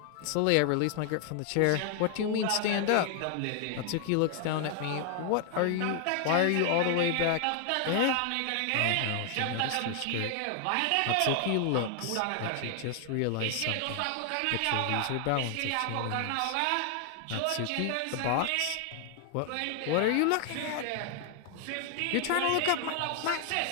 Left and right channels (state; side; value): different; both; correlation 0.00